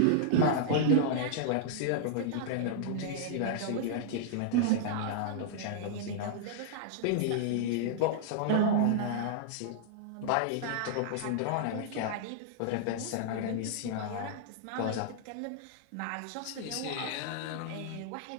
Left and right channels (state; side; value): different; both; correlation -0.01